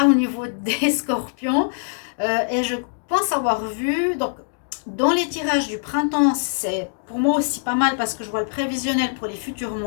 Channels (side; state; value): right; silent; digital silence